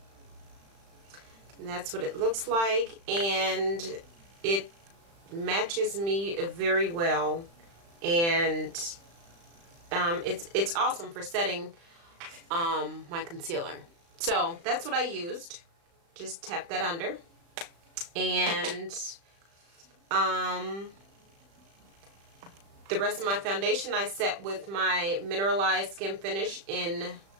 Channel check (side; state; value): left; late; 35 ms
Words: and that's what it looks like, and it matches me very well, and it's awesome for setting my concealer. So that's what I used. Just tap that under. And the rest of my foundation I set with my Mineralized Skin Finish in